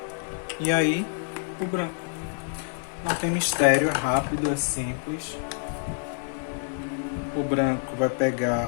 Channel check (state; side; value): silent; right; 60 dB below the other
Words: E aí, o branco. Não tem mistério, é rápido, é simples. O branco vai